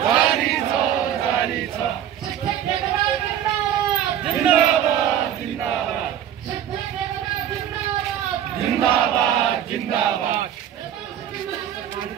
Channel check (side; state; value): left; quieter; 10.4 dB